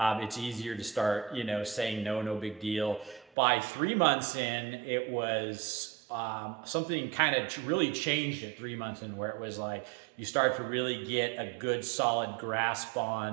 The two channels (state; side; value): drops out; left; at 3.3 s